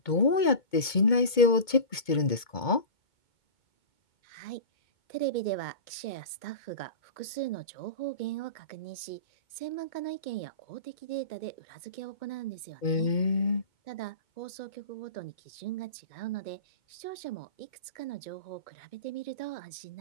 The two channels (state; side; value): late; right; 2.2 ms